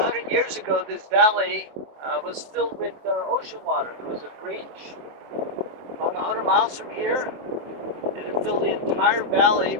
years ago, this valley was filled with ocean water. There was a breach about 100 miles from here, and it filled the entire valley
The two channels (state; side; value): late; left; 23 ms